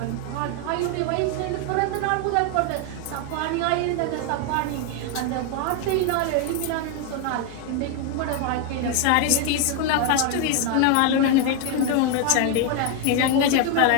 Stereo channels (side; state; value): both; different; correlation 0.01